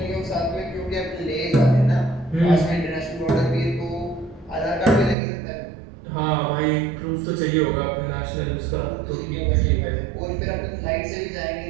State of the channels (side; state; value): left; drops out; at 5.2 s